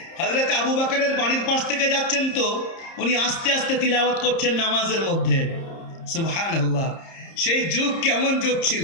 হযরত আবু বকরের বাড়ির পাশ থেকে যাচ্ছেন, তো উনি আস্তে আস্তে তিলাওয়াত করছেন নামাজের মধ্যে। সুবহানাল্লাহ, সেই যুগ কেমন যুগ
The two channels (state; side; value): late; right; 30 ms